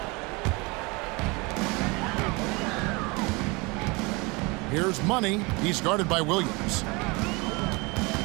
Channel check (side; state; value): left; quieter; 26.7 dB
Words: Here's Money. He's guarded by Williams.